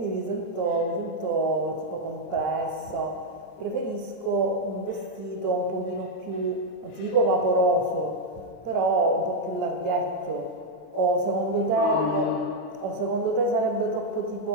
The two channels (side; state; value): right; late; 33 ms